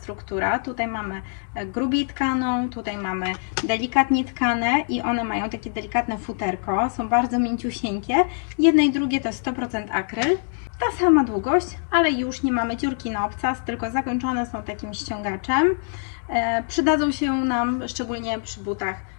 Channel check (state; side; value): silent; right; 63 dB below the other